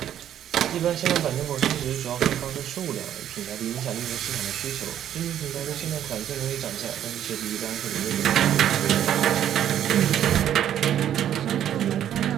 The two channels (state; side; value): quieter; left; 10.6 dB